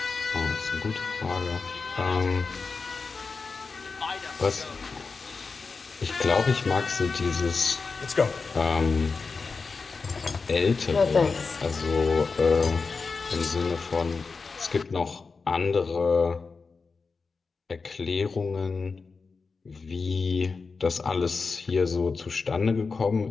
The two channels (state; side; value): quieter; right; 4.6 dB